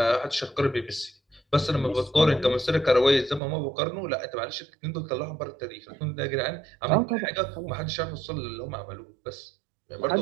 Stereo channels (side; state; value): left; drops out; at 3.4 s